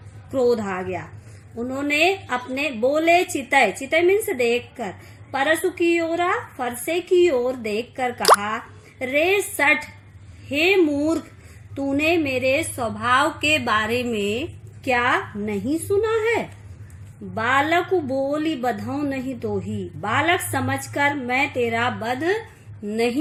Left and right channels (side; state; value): both; identical; correlation 1.00